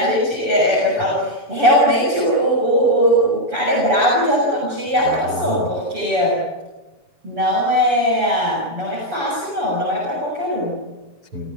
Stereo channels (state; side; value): late; left; 7.1 ms